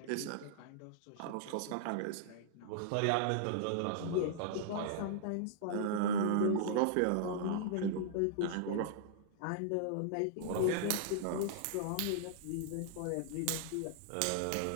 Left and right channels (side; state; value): both; different; correlation -0.01